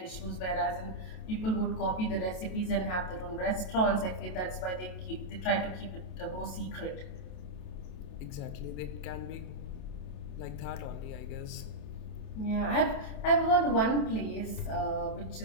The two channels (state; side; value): late; right; 27 ms